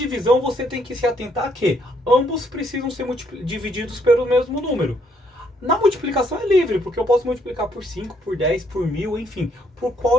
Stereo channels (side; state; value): both; normal; correlation 0.70